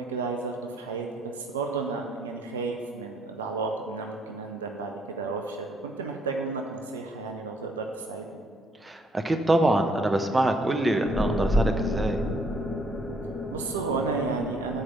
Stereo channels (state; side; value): normal; both; correlation 0.66